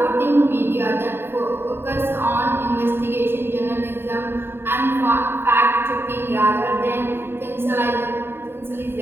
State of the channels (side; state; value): left; late; 0.11 ms